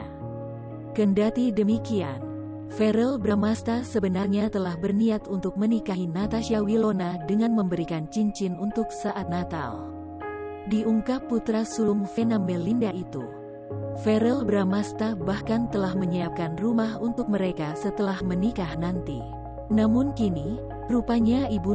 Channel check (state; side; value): identical; both; correlation 1.00